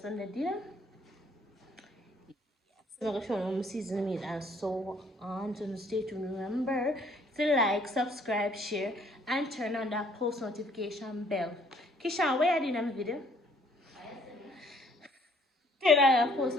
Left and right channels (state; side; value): normal; both; correlation 0.62